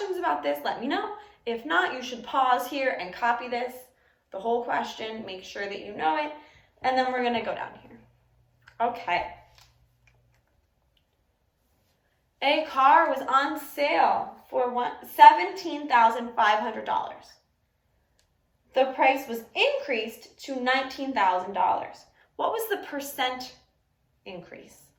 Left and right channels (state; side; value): identical; both; correlation 1.00